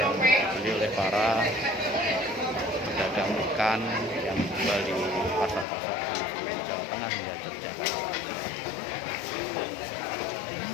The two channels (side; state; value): right; drops out; at 5.7 s